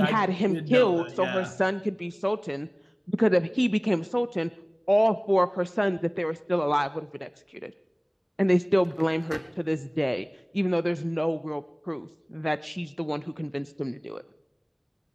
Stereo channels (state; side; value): identical; both; correlation 1.00